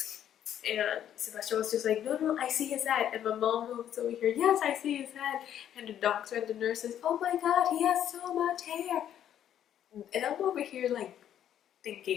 And Sebastian was just like, no, I see his head. And my mom was over here, yes, I see his head. And the doctor and the nurse says, oh my god, he has so much hair. And I'm over here like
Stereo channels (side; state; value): right; quieter; 10.4 dB